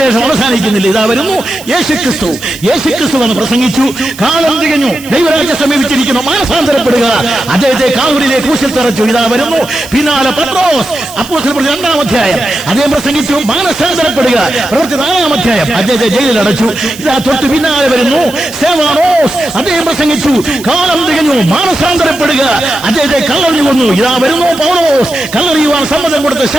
അവസാനിക്കുന്നില്ല. ഇതാ വരുന്നു യേശുക്രിസ്തു. യേശുക്രിസ്തു എന്ന് പ്രസംഗിച്ചു. കാലം തികഞ്ഞു, ദൈവരാജ്യം സമീപിച്ചിരിക്കുന്നു, മാനസാന്തരപ്പെടുക. അദ്ദേഹത്തെ കാൽവരിയിലെ ക്രൂശിൽ തറച്ചു. ഇതാ വരുന്നു പിന്നാലെ പത്രോസ്, അപ്പോസ്തലപ്രവൃത്തി 2-ാം അധ്യായം അദ്ദേഹം പ്രസംഗിച്ചു, മാനസാന്തരപ്പെടുക. പ്രവൃത്തി 4-ാം അധ്യായം അദ്ദേഹത്തെ ജയിലിൽ അടച്ചു. ഇതാ തൊട്ട് പിന്നാലെ വരുന്നു സ്തെഫാനോസ്, അദ്ദേഹം പ്രസംഗിച്ചു, കാലം തികഞ്ഞു, മാനസാന്തരപ്പെടുക. അദ്ദേഹത്തെ കല്ലെറിഞ്ഞു കൊന്നു. ഇതാ വരുന്നു പൗലോസ്, കല്ലെറിയുവാൻ സമ്മതം കൊടുത്ത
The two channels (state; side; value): noise; right; hiss, 18 dB below the sound